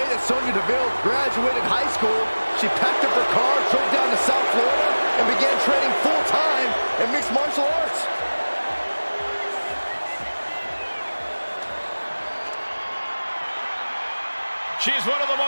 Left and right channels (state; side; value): inverted; both; correlation -1.00